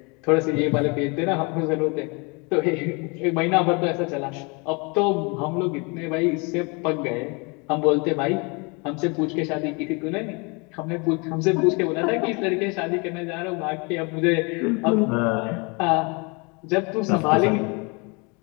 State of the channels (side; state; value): right; quieter; 30.5 dB